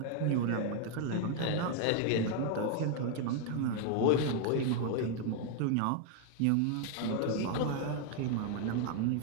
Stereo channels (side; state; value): both; different; correlation 0.00